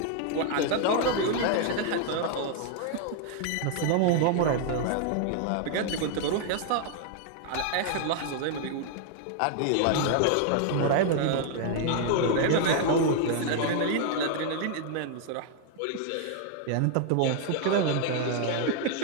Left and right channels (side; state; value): both; different; correlation 0.00